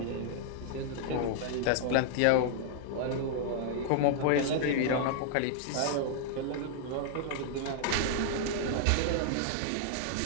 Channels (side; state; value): both; different; correlation -0.01